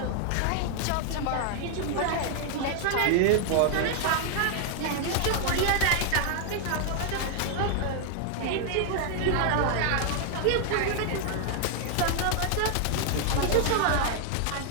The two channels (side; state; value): both; different; correlation 0.00